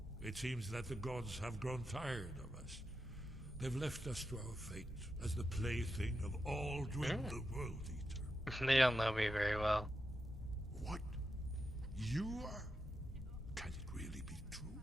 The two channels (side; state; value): both; normal; correlation 0.87